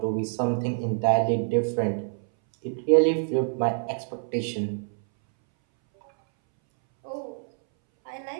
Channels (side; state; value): left; silent; 61 dB below the other